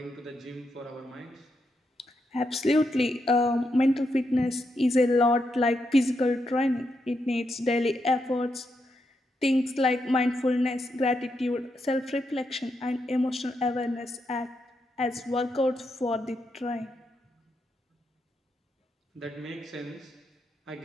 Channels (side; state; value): both; normal; correlation 0.82